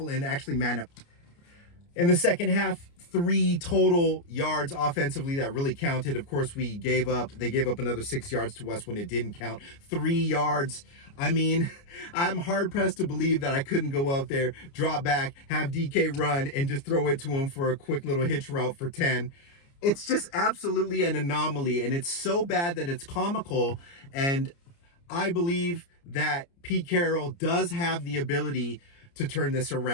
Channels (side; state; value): right; late; 29 ms